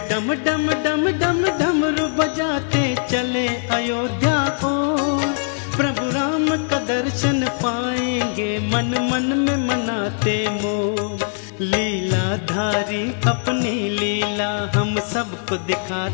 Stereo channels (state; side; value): silent; right; digital silence